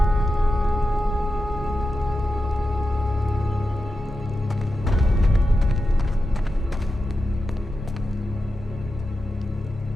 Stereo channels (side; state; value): both; normal; correlation 0.90